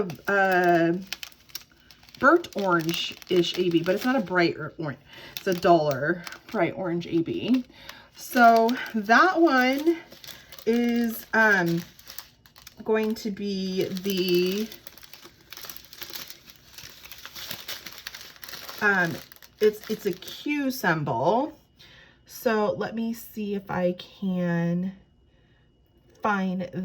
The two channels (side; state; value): both; identical; correlation 1.00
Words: burnt orange-ish AB, but it's not a bright orange. It's a duller bright orange AB. So that one is going to be the, it's a Q symbol. So let me see if I can find